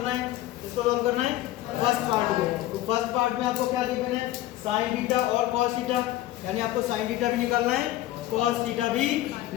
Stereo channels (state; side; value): quieter; right; 14.9 dB